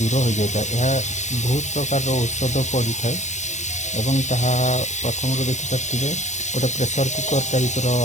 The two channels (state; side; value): late; right; 0.34 ms